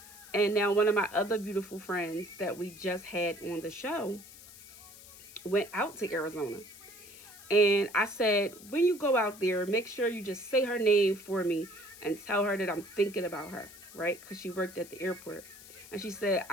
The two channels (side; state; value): left; noise; hiss, 18 dB below the sound